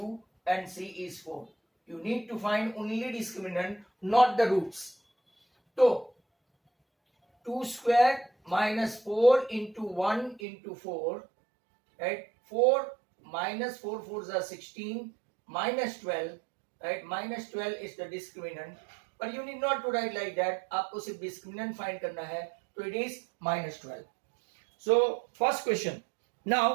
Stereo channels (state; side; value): drops out; left; at 10.4 s